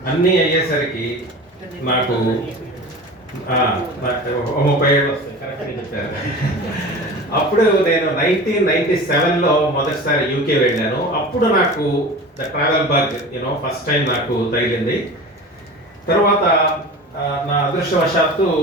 అన్నీ అయ్యేసరికి నాకు 30 ఏళ్ళు వస్తాయి, కరెక్ట్గా చెప్పారు. అప్పుడు నేను 1997లో మొదటిసారి యూకే వెళ్ళాను. అప్పుడు నాకు the travel bug first time నాకు తగిలింది. తర్వాత నా అదృష్టవశాత్తు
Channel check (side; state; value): both; normal; correlation 0.35